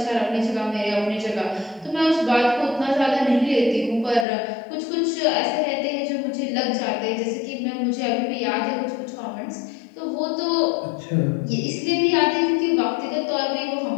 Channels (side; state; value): right; drops out; at 4.2 s